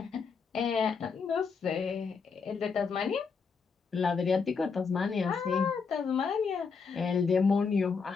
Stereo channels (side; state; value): right; quieter; 5.4 dB